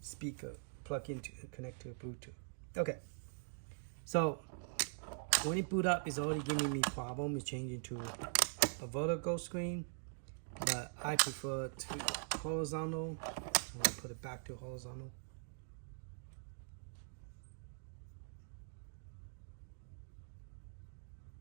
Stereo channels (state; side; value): silent; left; digital silence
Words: speaker, plug into, connect to Bluetooth. Okay, so when it boot up, it's already giving me problem. It's changing to a vertical screen, but I prefer to horizontal. So I'm gonna put it back to horizontal.